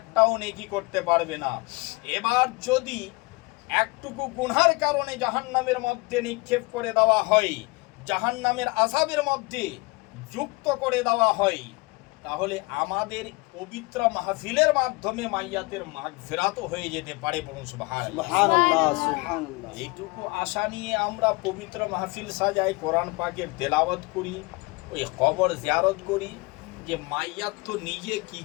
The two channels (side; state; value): right; quieter; 26.0 dB